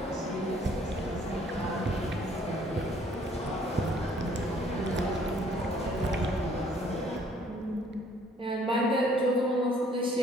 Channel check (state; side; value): normal; both; correlation 0.60